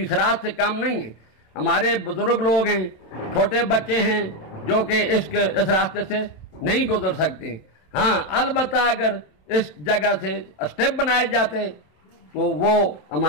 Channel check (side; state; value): right; late; 27 ms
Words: राज से काम नहीं है। हमारे बुजुर्ग लोग हैं, छोटे बच्चे हैं जो कि इस रास्ते से नहीं गुजर सकते। हाँ, अलबत्ता अगर इस जगह से स्टेप बनाए जाते तो वो